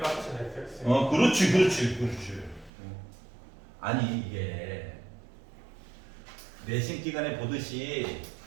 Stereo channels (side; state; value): left; drops out; at 2.7 s